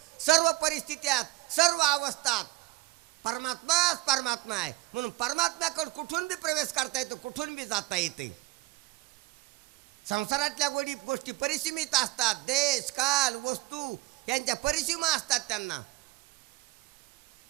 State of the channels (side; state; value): left; quieter; 21.0 dB